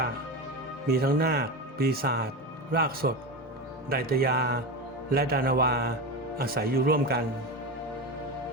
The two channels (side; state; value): both; normal; correlation 0.21